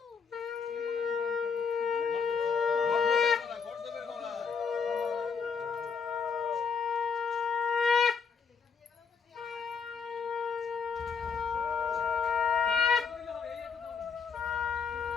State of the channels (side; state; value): right; quieter; 5.9 dB